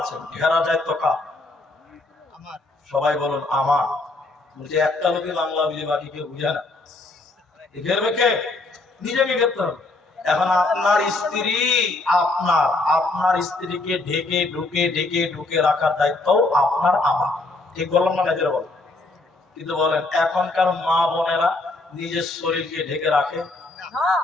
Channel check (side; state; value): right; quieter; 3.1 dB